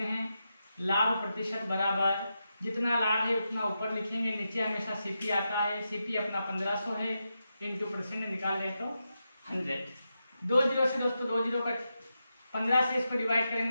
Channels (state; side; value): inverted; both; correlation -0.87